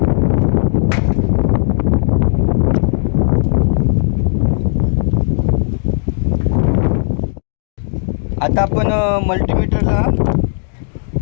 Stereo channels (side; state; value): right; silent; digital silence